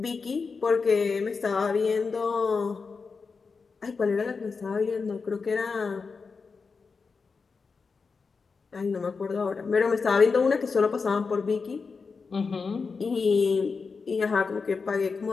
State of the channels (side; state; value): right; quieter; 4.8 dB